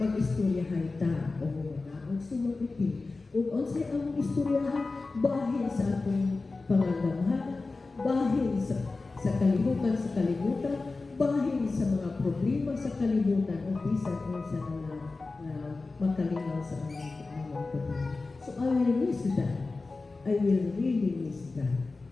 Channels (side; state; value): right; quieter; 3.7 dB